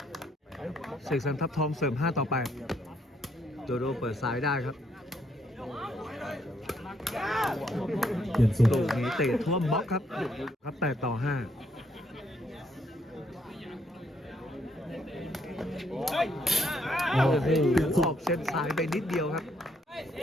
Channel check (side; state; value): both; normal; correlation 0.72